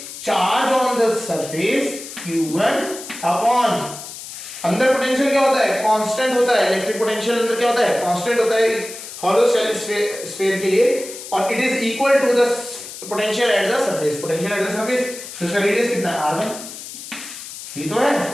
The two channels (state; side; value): noise; left; hiss, 12 dB below the sound